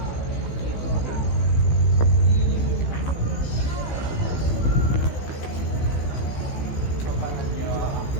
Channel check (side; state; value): right; late; 15 ms